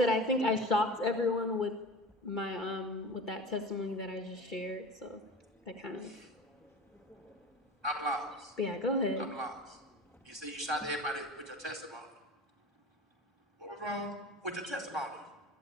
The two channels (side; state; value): both; normal; correlation 0.34